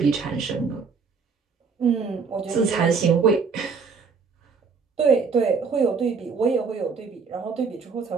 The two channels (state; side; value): quieter; left; 5.3 dB